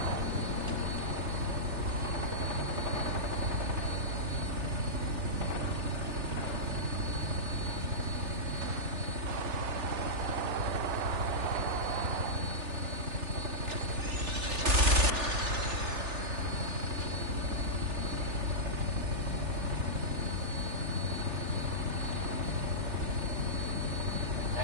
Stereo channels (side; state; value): left; late; 3.4 ms